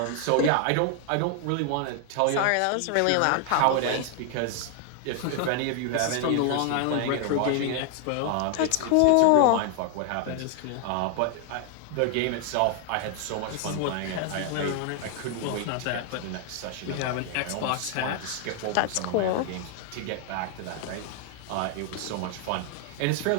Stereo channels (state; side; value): different; both; correlation 0.00